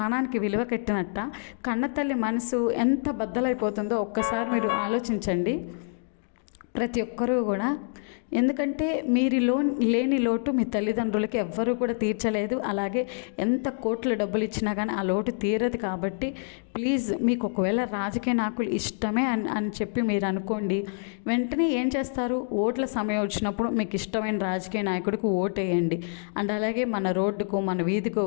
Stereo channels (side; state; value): right; silent; 60 dB below the other